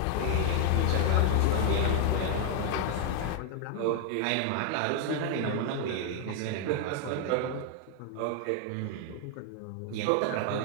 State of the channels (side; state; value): both; different; correlation 0.00